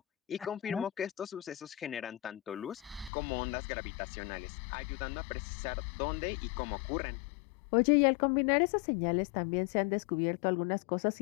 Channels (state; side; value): drops out; right; at 3.1 s